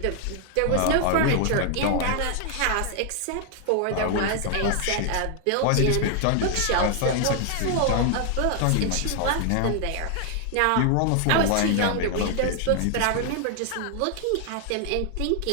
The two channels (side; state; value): both; different; correlation 0.00